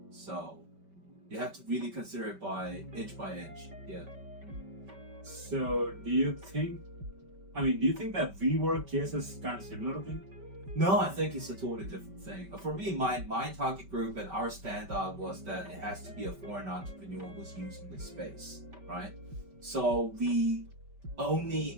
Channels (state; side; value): late; left; 5.2 ms